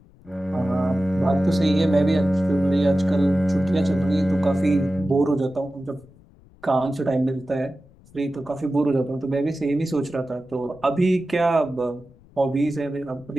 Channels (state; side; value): noise; left; rumble, 26 dB below the sound